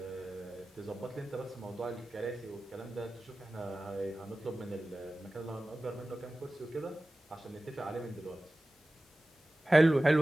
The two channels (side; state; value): both; normal; correlation 0.97